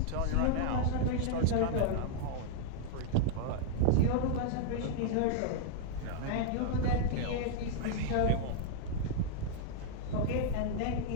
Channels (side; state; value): both; different; correlation -0.01